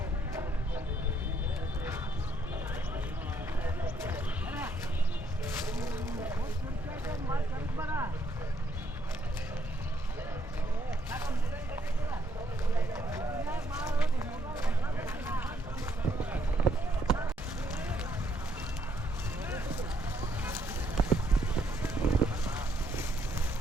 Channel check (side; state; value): both; normal; correlation 0.72